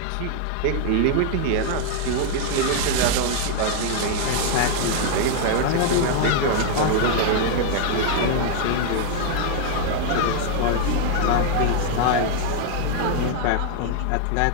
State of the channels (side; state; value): both; different; correlation 0.00